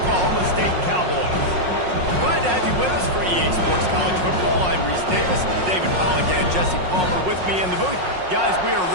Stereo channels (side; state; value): left; late; 5.5 ms